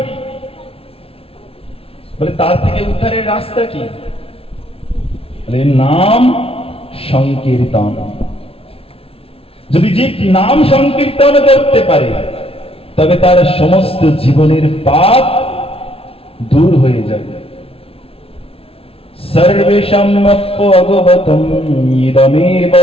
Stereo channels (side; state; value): right; late; 0.27 ms